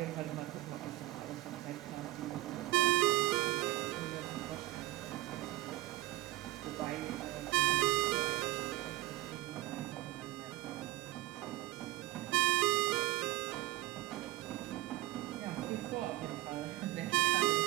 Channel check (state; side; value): quieter; left; 17.6 dB